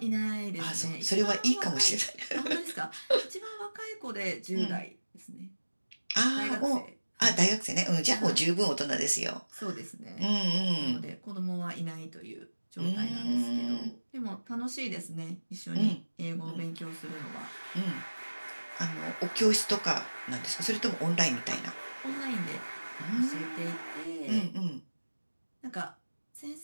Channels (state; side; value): inverted; both; correlation -1.00